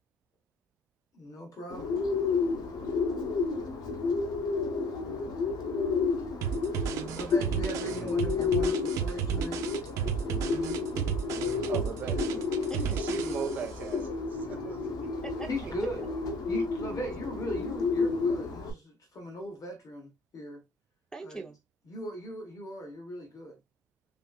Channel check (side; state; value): both; normal; correlation 0.50